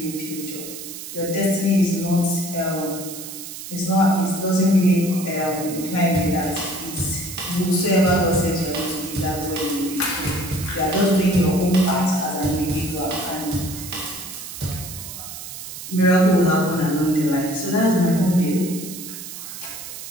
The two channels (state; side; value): noise; right; hiss, 11 dB below the sound